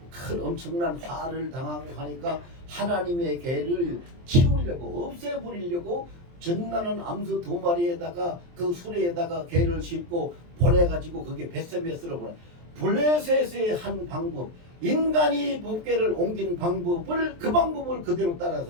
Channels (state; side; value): late; left; 23 ms